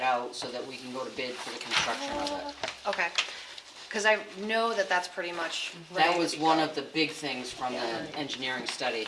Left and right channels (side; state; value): both; identical; correlation 1.00